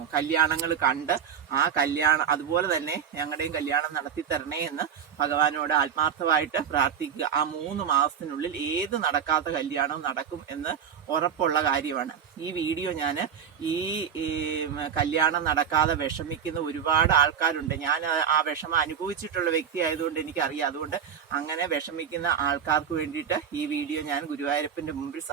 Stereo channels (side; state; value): left; quieter; 8.0 dB